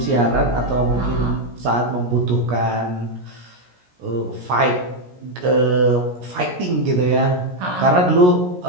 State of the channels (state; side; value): late; left; 17 ms